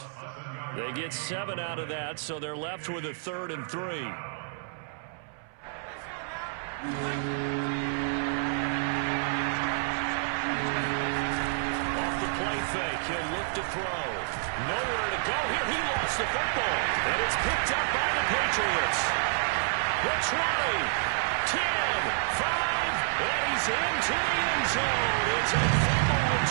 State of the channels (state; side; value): silent; left; 59 dB below the other